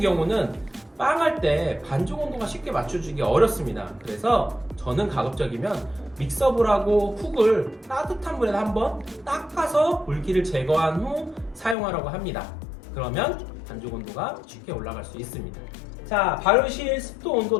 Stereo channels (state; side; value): drops out; right; at 11.8 s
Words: 빵할 때 반죽 온도가 쉽게 맞춰주기 어렵습니다. 그래서 저는 가급적이면 믹서볼하고 훅을 따뜻한 물에 한번 닦아서 물기를 제거한 후 사용하라고 합니다. 그러면 반죽 온도가 쉽게 올라갈 수 있습니다. 자, 발효실 습도 온도